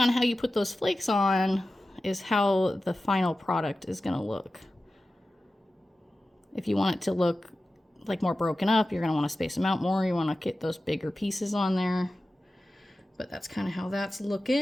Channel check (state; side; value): normal; both; correlation 0.94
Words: how you put those flakes on is how the final product is gonna look. If you want it to look like more broken up, you're going to want to space them out more. You want to get those bigger pieces on there. But that's kind of how that's